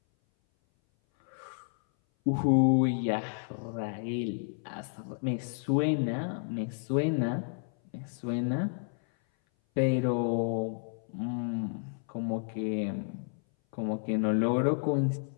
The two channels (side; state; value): right; silent; 57 dB below the other